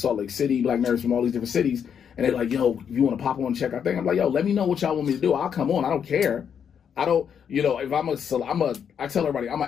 Lake City, black nerds from all these different cities. And they're like, yo, if you want to pop on and check our thing? I'm like, yo, let me know what y'all want me to do. I'll come on. I don't care. I don't, if I tell everybody, I'm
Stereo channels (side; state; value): right; quieter; 7.8 dB